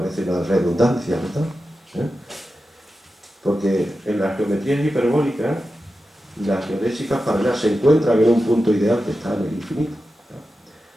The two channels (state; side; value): normal; both; correlation 0.92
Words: una redundancia, ¿verdad? Porque en las geometrías hiperbólicas, las geodésicas paralelas se encuentran en un punto ideal que está en el infinito.